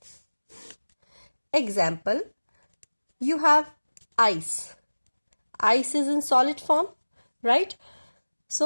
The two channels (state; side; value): inverted; both; correlation -1.00